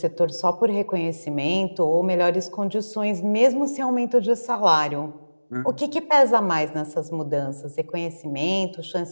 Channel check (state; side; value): inverted; both; correlation -1.00